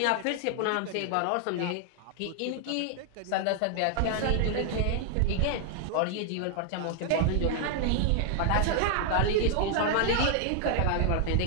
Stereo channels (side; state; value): both; different; correlation 0.00